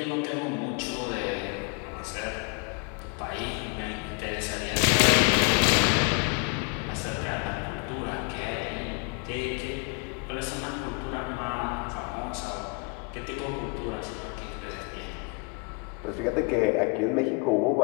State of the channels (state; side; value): quieter; right; 33.0 dB